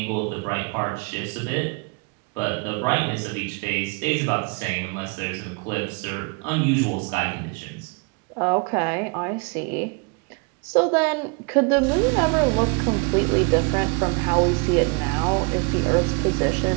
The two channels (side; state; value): left; quieter; 32.4 dB